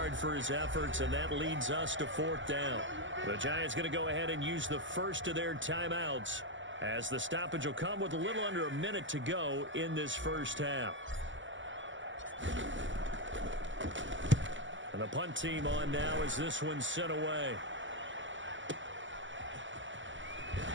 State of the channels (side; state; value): left; late; 0.55 ms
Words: for his efforts, and that leads us to 4th down. The Giants going to go ahead and use the first of their timeouts, as the stoppage will come with a little under a minute to go in this first half. And the punt team on now as this one's sent away.